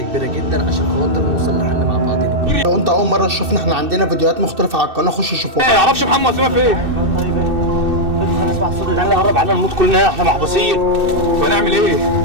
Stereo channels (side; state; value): left; late; 2.6 ms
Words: كبيره جدا عشان خاطر نوصل لحل مع بعضينا. لو انت اول مره تشوفنا، احنا عندنا فيديوهات مختلفه على القناه، خش شوفوها. ما يعرفش محمد وسيمة فين؟ طيب ايه؟ نسمع الصوت ده قرب علينا نموت كلنا، احنا محبوسين. ونعمل ايه؟